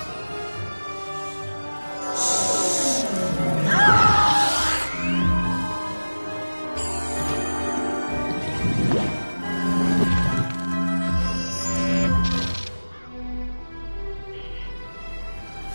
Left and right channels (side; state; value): both; inverted; correlation -1.00